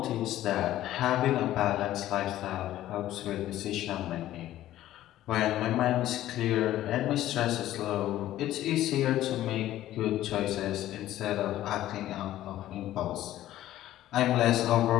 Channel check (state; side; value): quieter; right; 13.8 dB